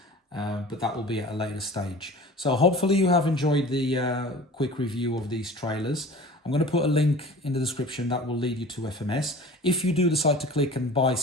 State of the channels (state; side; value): normal; both; correlation 0.41